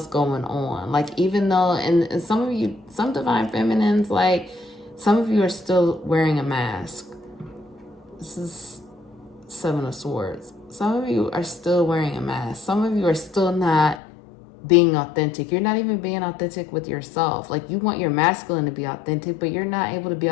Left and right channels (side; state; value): right; drops out; at 14.0 s